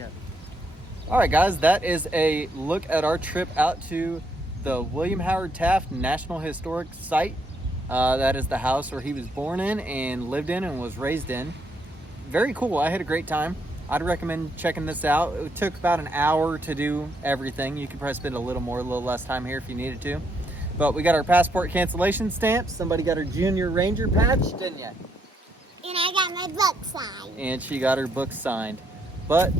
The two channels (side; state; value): both; normal; correlation 0.75